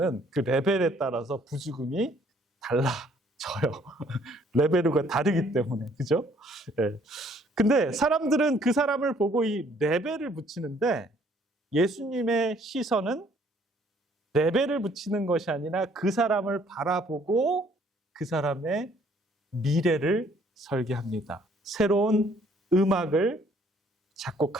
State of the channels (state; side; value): normal; both; correlation 0.62